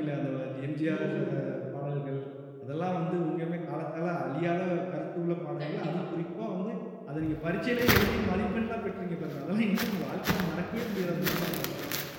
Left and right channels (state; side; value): identical; both; correlation 1.00